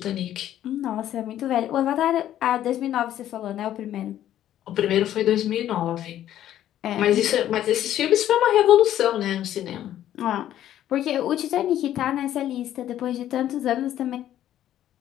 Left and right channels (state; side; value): quieter; right; 11.9 dB